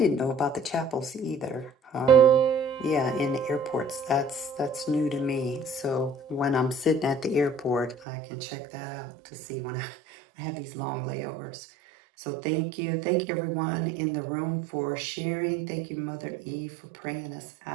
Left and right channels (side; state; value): left; drops out; at 8.0 s